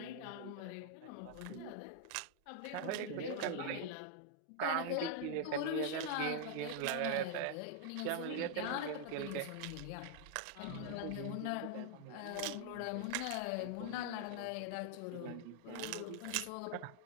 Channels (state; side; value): different; both; correlation 0.00